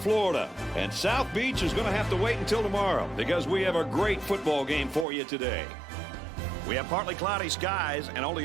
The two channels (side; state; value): left; drops out; at 5.1 s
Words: and South Beach is going to have to wait until tomorrow because we have a great football game for you today. We have partly cloudy skies and